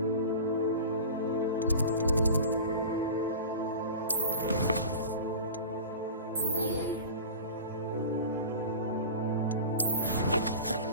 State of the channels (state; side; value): inverted; both; correlation -0.34